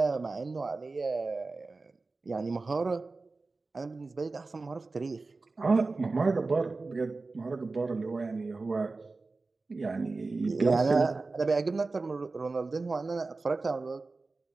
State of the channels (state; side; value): quieter; left; 3.7 dB